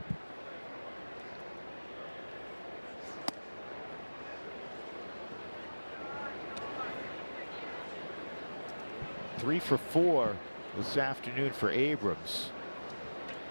Three for 4 this afternoon for Abrams.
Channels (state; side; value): inverted; both; correlation -1.00